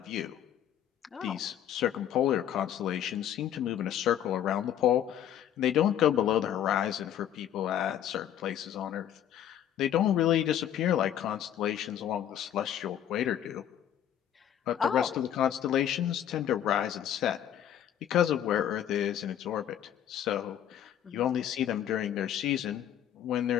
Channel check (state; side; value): quieter; right; 10.5 dB